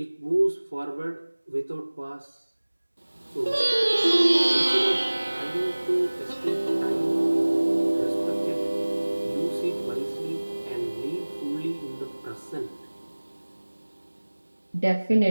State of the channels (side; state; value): both; inverted; correlation -1.00